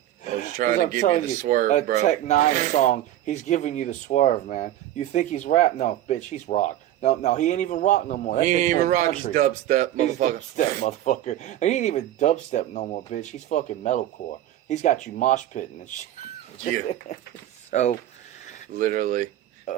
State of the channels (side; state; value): left; quieter; 13.1 dB